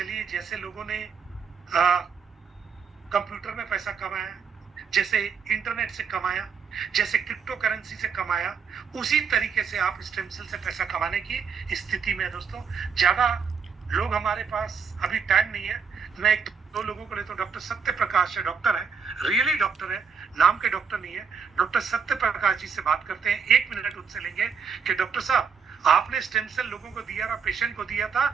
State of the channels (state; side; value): quieter; left; 6.1 dB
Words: जैसे लोगों ने कंप्यूटर में पैसा कमाया, जैसे इंटरनेट से कमाया, जैसे क्रिप्टो करेंसी से कमाया, उसी तरीके से आप स्टेम सेल से पैसा कमाने की स्थिति में है। दोस्तों, ज्यादा लोग हमारे पास अभी टाइम नहीं है। मैं 1-2 लोगों को लेता हूँ। डॉक्टर सत्य प्रकाश है, डॉक्टर है, रियली डॉक्टर है, नाम के डॉक्टर नहीं है। डॉक्टर सत्य प्रकाश जी से बात करते हैं। 1 मिनट उनसे लेंगे कि डॉक्टर साहब, आपने स्टेम सेल लोगों को दिया था, पेशेंट को दिया था,